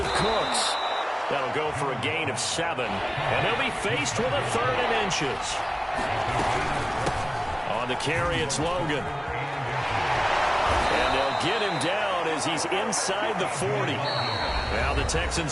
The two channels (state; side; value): identical; both; correlation 1.00